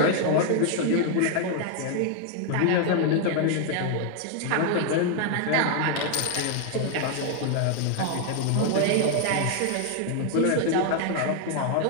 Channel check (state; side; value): different; both; correlation 0.00